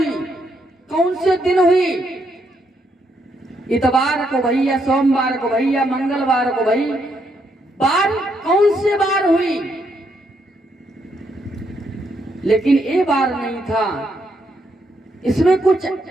कौन से दिन हुई? इतवार को भैया, सोमवार को भैया, मंगलवार को भई, बार कौन से बार हुई? लेकिन ये बार नहीं था, इसमें कुछ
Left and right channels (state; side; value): normal; both; correlation 0.76